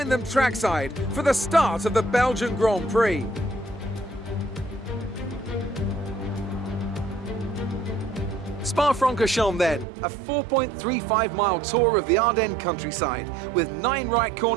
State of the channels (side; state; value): left; drops out; at 9.9 s